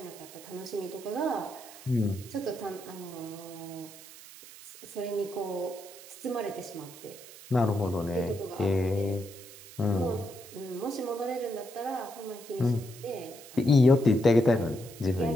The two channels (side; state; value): right; noise; hiss, 17 dB below the sound